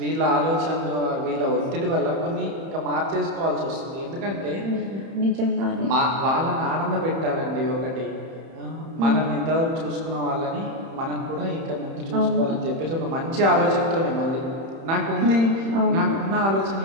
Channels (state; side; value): late; left; 31 ms